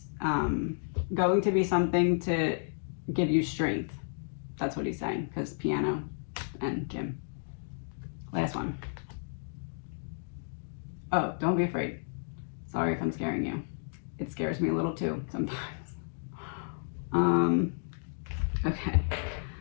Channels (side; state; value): right; silent; digital silence